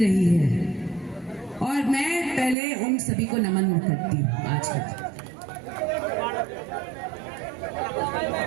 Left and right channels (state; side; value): drops out; left; at 2.6 s